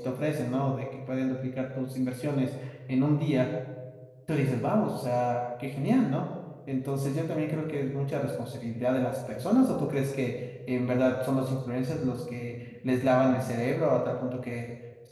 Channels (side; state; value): both; identical; correlation 1.00